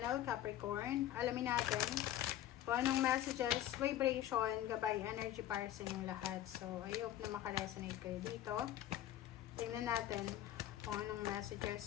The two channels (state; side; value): quieter; right; 12.4 dB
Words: Capricorn. Alamin natin kung anong messages, vibration, gabay, energy para sa inyong lahat. So, I hope na makaresonate kayo dito. Tingnan natin kung anong